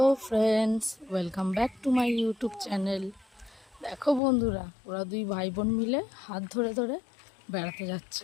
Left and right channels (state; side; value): drops out; right; at 4.2 s